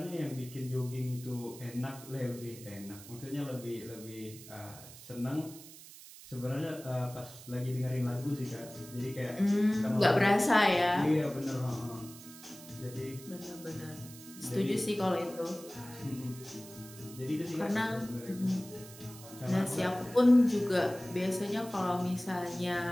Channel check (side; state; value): right; noise; hiss, 17 dB below the sound